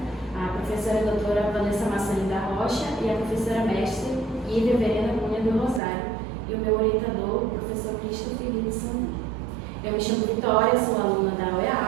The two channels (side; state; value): left; drops out; at 5.8 s